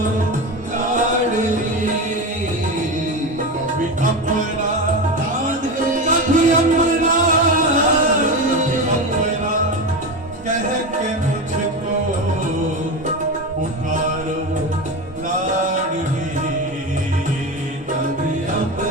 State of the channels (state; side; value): normal; both; correlation 0.21